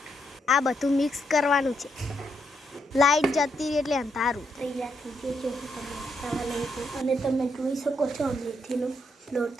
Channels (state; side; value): normal; both; correlation 0.78